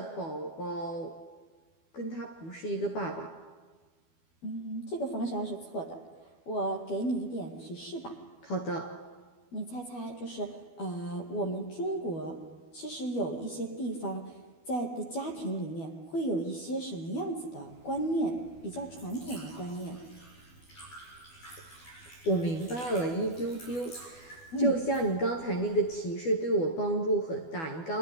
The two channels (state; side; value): late; right; 12 ms